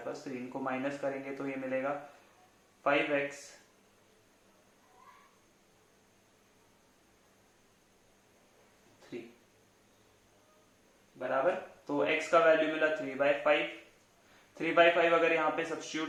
पास 3, इनको माइनस करेंगे तो ये मिलेगा 5x बराबर, तो x का वैल्यू मिला 3/5, 3/5 अगर यहाँ पे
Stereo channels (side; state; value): both; identical; correlation 1.00